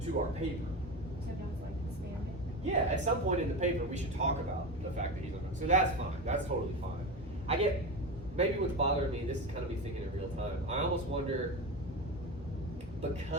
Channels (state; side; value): normal; both; correlation 0.22